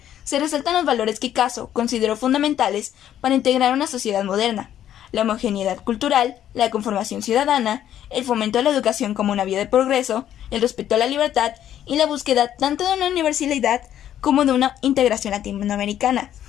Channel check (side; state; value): right; quieter; 11.0 dB